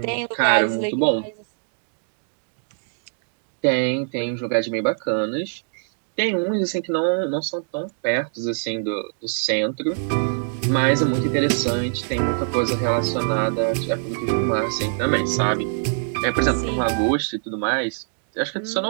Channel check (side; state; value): left; silent; digital silence